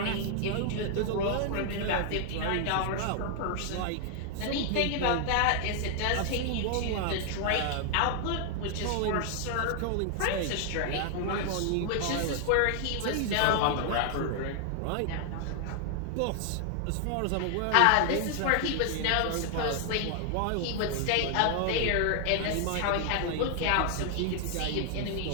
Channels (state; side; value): different; both; correlation 0.00